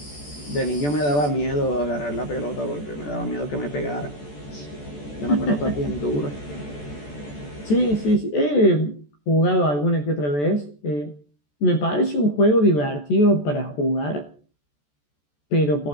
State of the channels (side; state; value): right; late; 14 ms